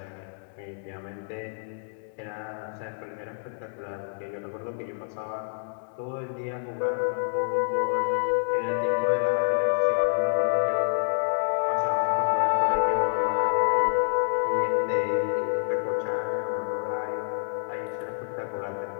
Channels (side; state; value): right; silent; digital silence